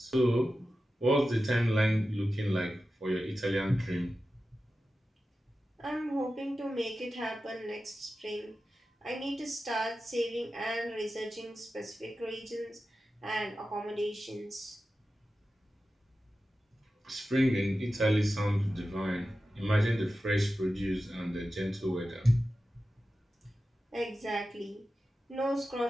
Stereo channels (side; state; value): both; normal; correlation 0.93